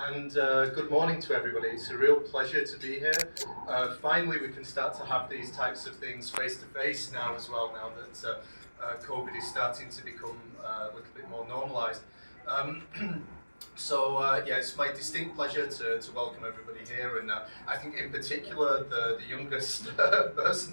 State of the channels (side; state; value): both; inverted; correlation -1.00